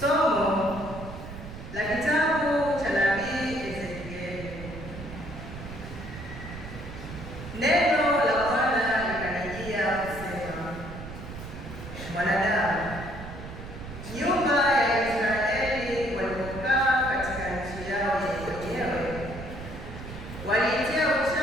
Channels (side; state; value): right; noise; rumble, 11 dB below the sound